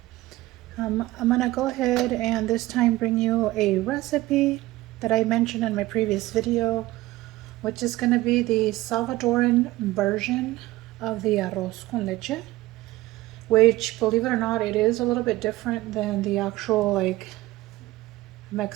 I'm gonna go ahead and this time bring you a recipe that I mentioned in my previous video, which is gonna be the Salvadoran version of the arroz con leche, which, believe it or not, it is a little bit different than the actual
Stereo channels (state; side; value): quieter; left; 17.8 dB